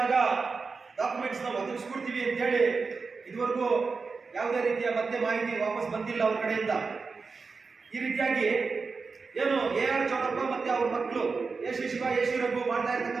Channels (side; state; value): left; quieter; 4.6 dB